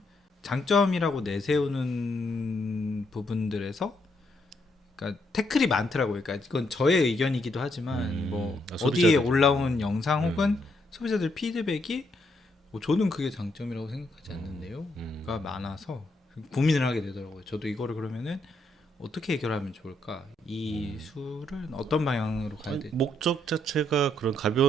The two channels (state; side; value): normal; both; correlation 0.75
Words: 장점이라고 내세우는 부분들에서 그러니까 태클이 많더라고요. 그러니까 이건 저의 의견이기도 하지만 뭐 어디에 소비자들. 올라온 영상 혹은 소비자들 피드백이 저는 그게 장점이라고 생각하지 않는데요가 많아서 고민을 하게 되더라고요. 저도 이거를 그러면은 어떻게 해결하면 좋을까? 이 술은 어떤 방향으로 가야 될지. 목적 자체가 그런